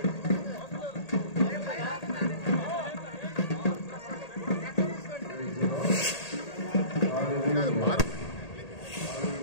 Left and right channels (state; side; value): late; right; 1.8 ms